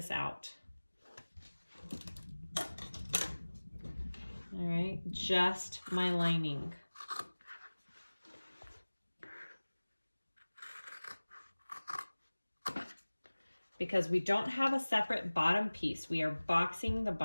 out. All right, just my lining. Because we don't have a separate bottom piece. We are boxing the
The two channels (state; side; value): inverted; both; correlation -1.00